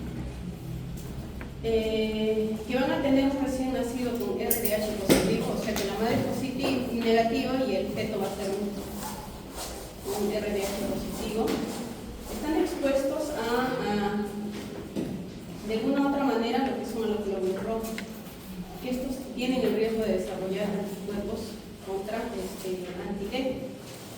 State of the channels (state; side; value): identical; both; correlation 1.00